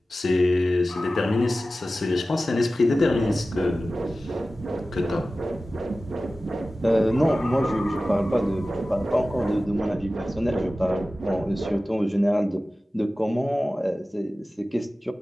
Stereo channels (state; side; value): normal; both; correlation 0.95